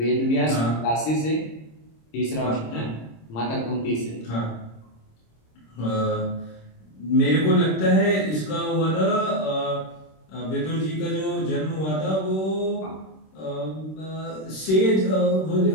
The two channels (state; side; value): late; right; 26 ms